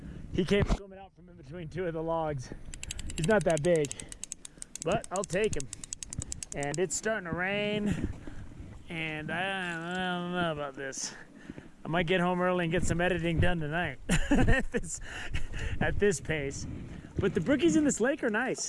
he came swimming out from in between two of the logs. He's not that big, but I'll take him. And it's starting to rain. And I don't know about this. I might get home early and get some editing done tonight at this pace. But the brookies in this lake are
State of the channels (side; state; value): both; identical; correlation 1.00